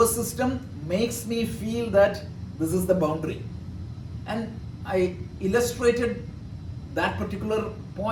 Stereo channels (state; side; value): identical; both; correlation 1.00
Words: system makes me feel that this is the boundary. And I illustrated that particular